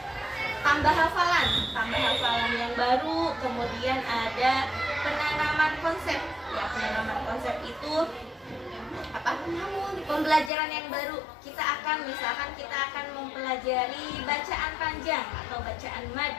tambah hafalan yang baru, kemudian ada penanaman konsep ya. Penanaman konsep itu pembelajaran yang baru. Misalkan kita akan mempelajari bacaan panjang atau bacaan mad.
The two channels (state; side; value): drops out; right; at 10.5 s